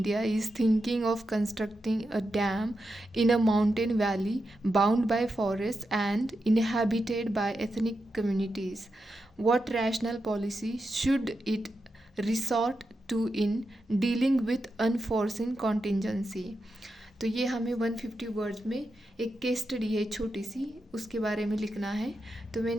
is thinking of constructing a dam in a mountain valley bound by forests and inhabited by ethnic communities. What rational policy should it resort to in dealing with unforeseen contingency? तो ये हमें 150 words में एक case study है छोटी सी, उसके बारे में लिखना है। तो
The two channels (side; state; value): both; normal; correlation 0.88